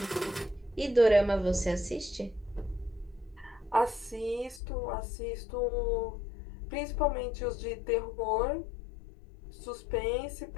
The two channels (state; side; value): drops out; right; at 4.6 s